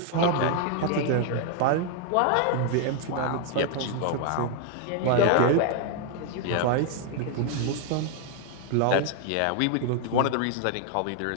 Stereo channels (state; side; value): different; both; correlation 0.00